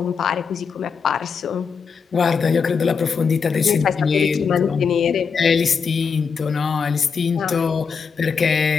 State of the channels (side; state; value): right; quieter; 5.9 dB